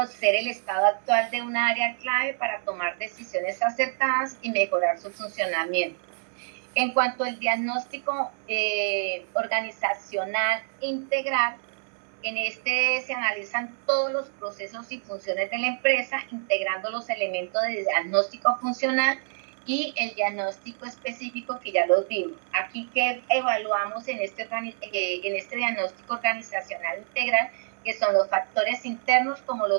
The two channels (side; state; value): left; silent; digital silence